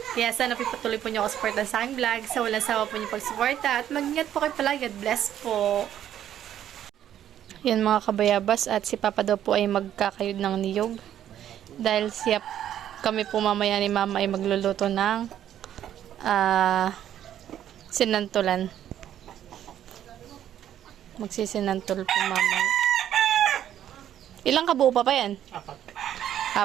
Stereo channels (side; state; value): left; quieter; 10.8 dB